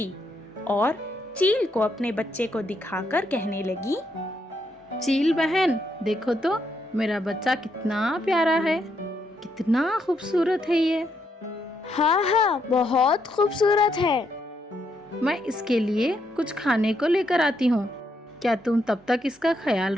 और चील को अपने बच्चे को दिखाकर कहने लगी, चील बहन, देखो तो मेरा बच्चा कितना प्यारा है, कितना खूबसूरत है ये। हाँ, बहुत खूबसूरत है। मैं इसके लिए कुछ खाने को लेकर आती हूँ। क्या तुम तब तक इसका ख्याल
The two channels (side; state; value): both; normal; correlation 0.77